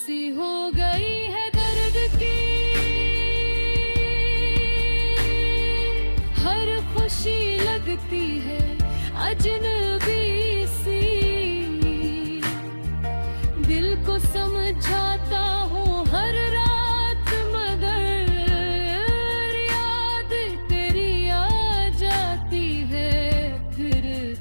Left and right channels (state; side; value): inverted; both; correlation -1.00